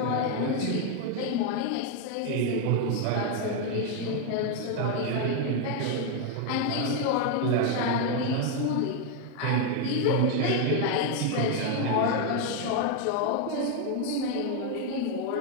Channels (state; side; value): different; both; correlation 0.01